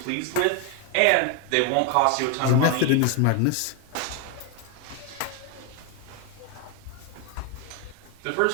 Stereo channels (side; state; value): both; different; correlation 0.01